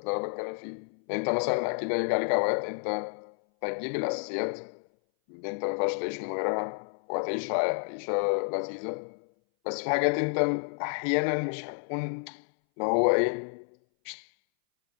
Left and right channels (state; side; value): silent; right; 58 dB below the other